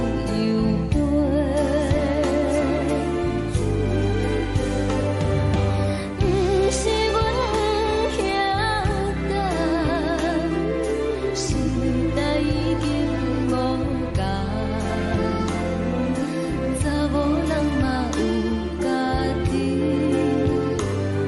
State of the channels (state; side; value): identical; both; correlation 1.00